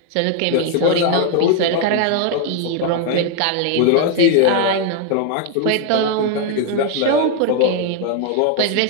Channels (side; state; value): both; different; correlation 0.01